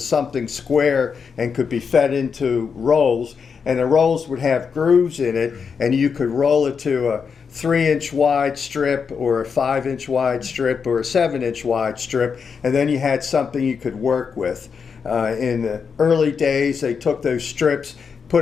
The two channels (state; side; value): quieter; right; 6.0 dB